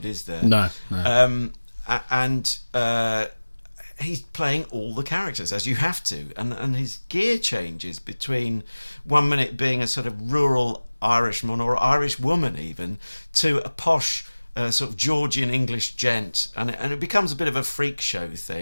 is there? No. He's playing all the characters, as you have to, and his gear changes between 1 minute being a sort of rural Irishman or Irish woman even, to a posh sort of Georgian English gent, and it becomes a bit of a freak show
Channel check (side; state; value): both; inverted; correlation -1.00